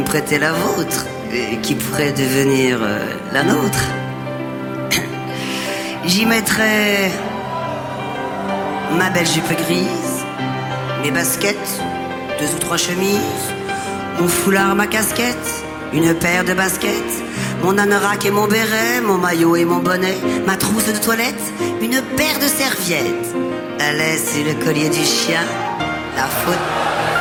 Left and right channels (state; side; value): identical; both; correlation 1.00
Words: prêter la vôtre, qui pourrait devenir la nôtre. J'y mettrais ma belle jupe grise, mes baskets, 2 ou 3 chemises, mon foulard, ma casquette, une paire de baskets, mon anorak et mon béret, mon maillot et mon bonnet, ma trousse de toilette, une paire de serviettes, la laisse et le collier du chien, la faute,